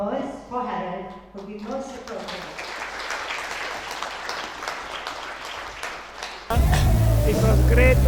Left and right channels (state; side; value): identical; both; correlation 1.00